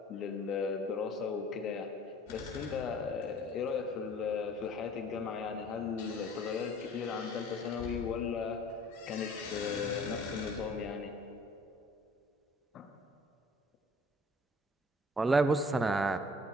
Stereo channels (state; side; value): normal; both; correlation 0.53